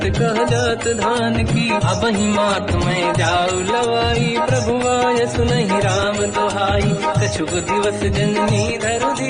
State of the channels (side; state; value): both; identical; correlation 1.00